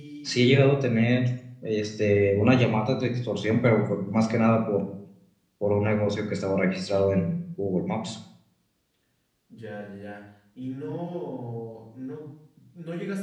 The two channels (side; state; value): both; identical; correlation 1.00